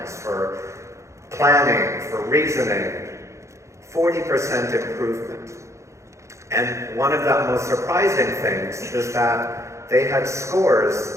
for planning, for reasoning, 40% improvement. And one of the most surprising things is that they had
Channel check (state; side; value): late; left; 0.14 ms